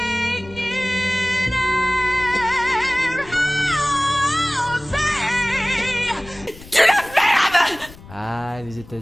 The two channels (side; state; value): left; noise; rumble, 19 dB below the sound